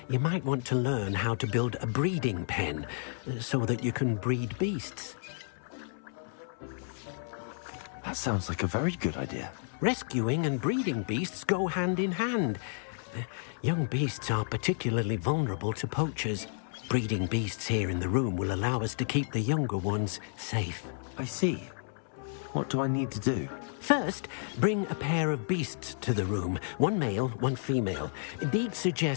you might want to learn how to build a breeding pen so that you can breed beasts. That sounds like a very good idea. Rescuing and breeding beasts go hand in hand. Young beasts are particularly vulnerable to poachers. Breeding beasts here in the room will allow us to keep the younger ones safe. I see. What do I need to do? First, bring a pair of beasts to the room. One male, one female. Deke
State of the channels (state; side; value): silent; right; 57 dB below the other